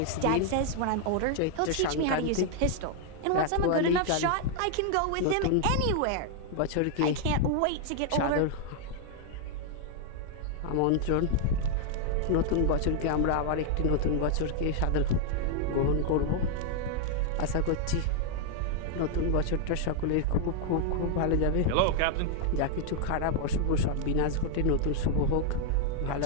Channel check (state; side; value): different; both; correlation 0.00